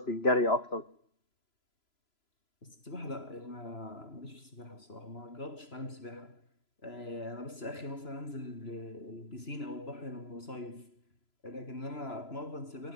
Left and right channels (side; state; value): right; late; 3.0 ms